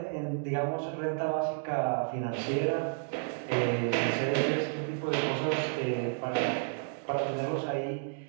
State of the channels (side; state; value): left; silent; 57 dB below the other